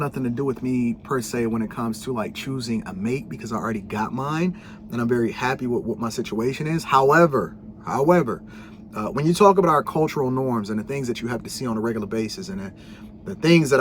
to do with me per se when it comes to like choosing a mate, because I already got mine and I'm very happy with what my situation is. However, when you talk about our cultural norms and the things that you have to see on a regular basis, and the things that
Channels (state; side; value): identical; both; correlation 1.00